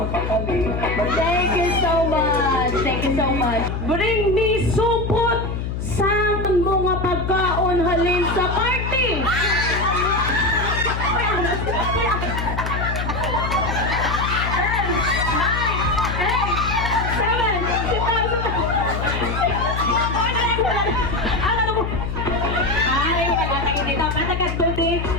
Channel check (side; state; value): left; noise; hum, 3 dB below the sound